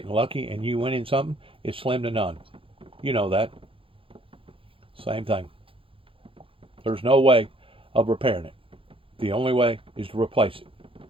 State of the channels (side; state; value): left; late; 0.26 ms